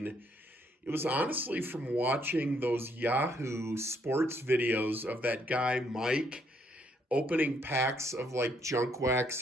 it was honestly from watching those Yahoo Sports videos of that guy, Mike, opening packs of like junk wax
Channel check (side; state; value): both; normal; correlation 0.71